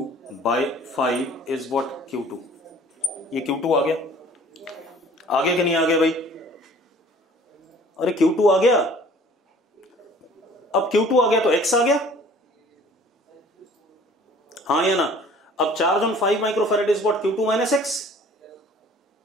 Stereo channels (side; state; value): both; normal; correlation 0.51